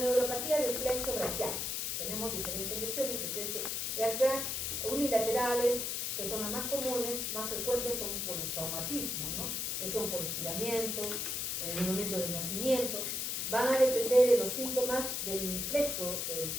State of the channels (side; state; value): left; noise; hiss, 1 dB below the sound